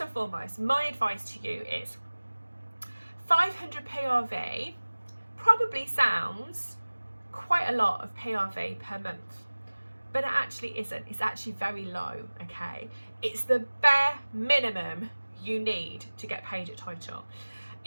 foremost, my advice to you is 500 PRV probably sounds quite a lot of PRV per month, but it actually isn't. It's actually very low, okay? It's the bare minimum you need to get paid at title.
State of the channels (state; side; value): inverted; both; correlation -1.00